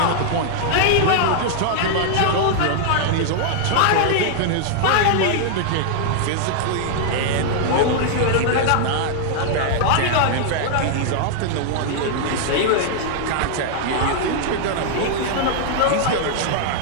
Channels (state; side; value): different; both; correlation -0.01